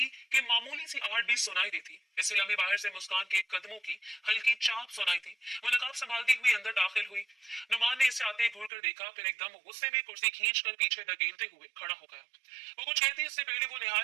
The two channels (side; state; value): left; drops out; at 8.7 s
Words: कि मामूली सी आहट भी सुनाई देती। इस लम्हे बाहर से मुस्कान के कदमों की हल्की चाप सुनाई थी। वो नकाब संभालती हुई अंदर दाखिल हुई। नुमान ने इसे आते घूर कर देखा, फिर एकदम गुस्से में कुर्सी खींच कर पीछे धकेलते हुए खड़ा हो गया। वो कुछ कहती इससे पहले वो